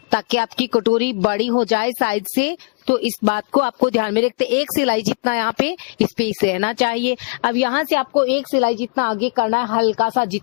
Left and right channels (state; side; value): quieter; right; 35.2 dB